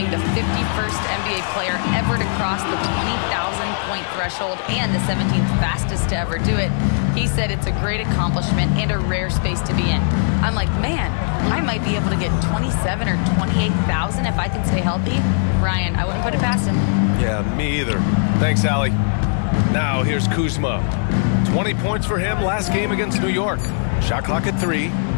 the 51st NBA player ever to cross the 20,000-point threshold and the 17th fastest to ever do it. He said it's a great accomplishment and a rare space to be in. I'm like, man, I might be able to get 27 or 28,000 if I can stay healthy. Ryan, I wouldn't put it past him. Yeah, me either. Thanks, Allie. Now here's Kuzma. 20 points for him last game against New York. Shot clock at 3.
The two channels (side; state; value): right; silent; digital silence